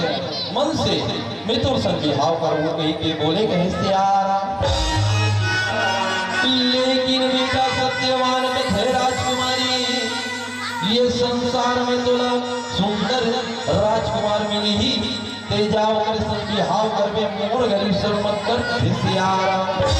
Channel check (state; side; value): identical; both; correlation 1.00